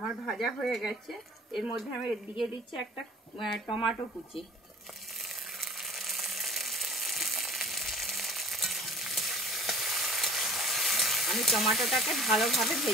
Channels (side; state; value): both; normal; correlation 0.45